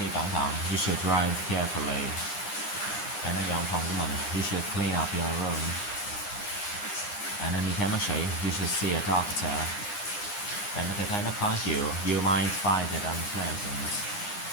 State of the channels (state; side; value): late; right; 9.8 ms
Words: cẩn thận. You should drive carefully. Bạn nên dọn phòng của mình. You should clean up your room. Bạn nên đi khám bác sĩ. You should see a doctor. Bạn có thể thấy nó khó chịu. You might find it unpleasant.